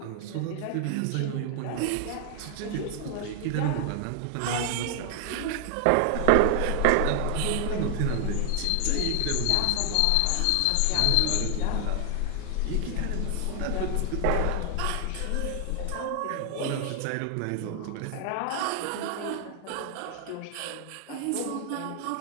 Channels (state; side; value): different; both; correlation 0.00